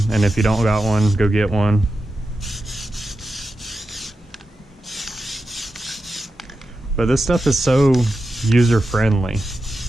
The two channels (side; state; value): both; normal; correlation 0.90